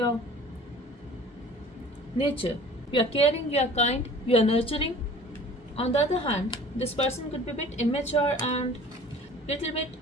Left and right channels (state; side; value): normal; both; correlation 0.46